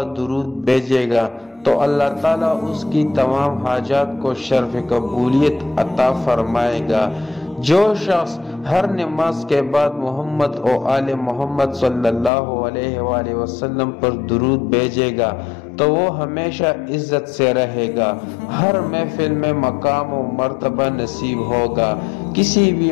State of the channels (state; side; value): drops out; right; at 12.3 s